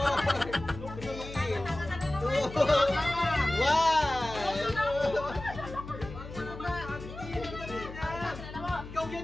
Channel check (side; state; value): left; noise; hum, 12 dB below the sound